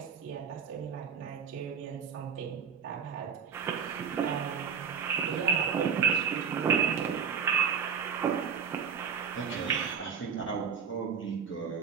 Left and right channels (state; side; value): quieter; left; 6.7 dB